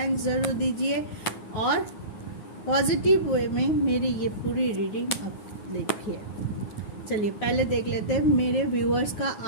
ज़रूर दीजिए और पॉजिटिव वे में मेरी ये पूरी रीडिंग अब लिखिए। चलिए पहले देख लेते हैं मेरे व्यूअर्स का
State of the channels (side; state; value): right; late; 9.7 ms